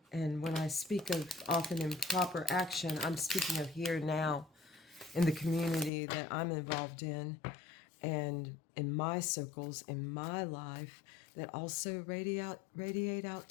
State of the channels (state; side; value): drops out; right; at 5.9 s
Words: And when I speak of often improper action, I'm speaking of here now in the community that I'm involved in and in my circles, in my life, that also radiate out